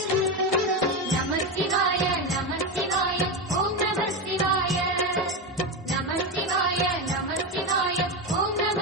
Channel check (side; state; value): both; normal; correlation 0.15